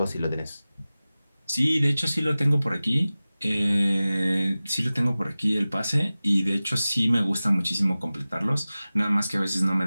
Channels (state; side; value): inverted; both; correlation -0.97